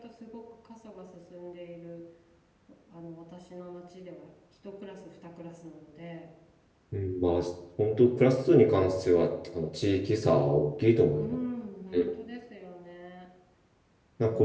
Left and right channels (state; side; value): identical; both; correlation 1.00